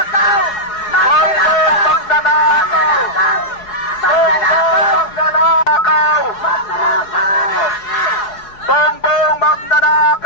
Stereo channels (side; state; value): right; late; 4.8 ms